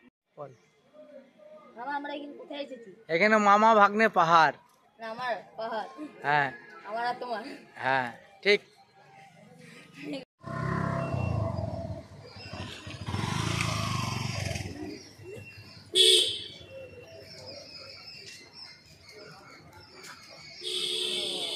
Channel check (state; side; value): identical; both; correlation 1.00